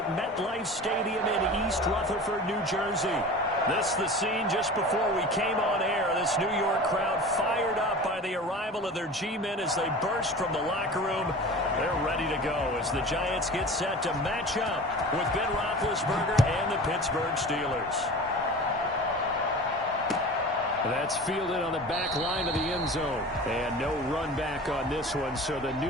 MetLife Stadium in East Rutherford, New Jersey. This is the scene just before we came on air. This New York crowd fired up by the arrival of their G-men as they burst from the locker room. They're ready to go as the Giants get set to match up with Ben Roethlisberger and the Pittsburgh Steelers. That's fielded on the back line of the end zone. And no run back on this one, so the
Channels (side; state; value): both; normal; correlation 0.37